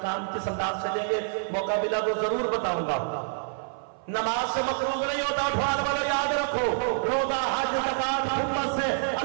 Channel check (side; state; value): left; silent; 56 dB below the other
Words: کس انداز سے لیں گے، موقع ملا تو ضرور بتاؤں گا. نماز سے مقروض نہیں ہوتا. اٹھوان والوں یاد رکھو، روزہ، حج، زکات، خدمت سے